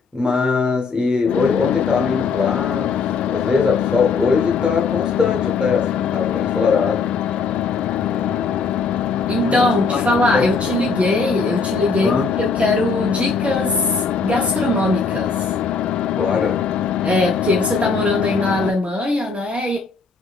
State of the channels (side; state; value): right; quieter; 4.7 dB